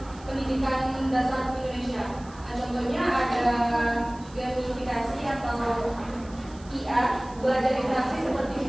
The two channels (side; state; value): right; noise; hiss, 24 dB below the sound